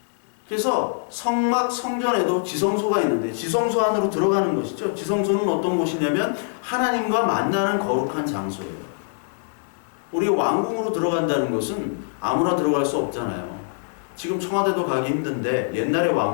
그래서 성전에도 지성소가 있는데 지성소 안으로 들어가는 것이죠. 지성소는 어떤 곳이냐면 하나님과 만나는 거룩한 장소예요. 우리가 왕궁으로 들어간다는 것은 아무나 들어갈 수 없잖아요. 지금 청와대도 가기 힘든데 옛날의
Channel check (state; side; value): silent; right; 63 dB below the other